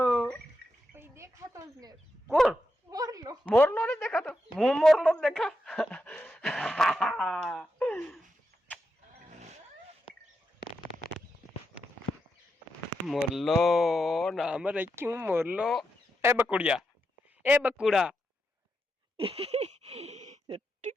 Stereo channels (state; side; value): normal; both; correlation 0.85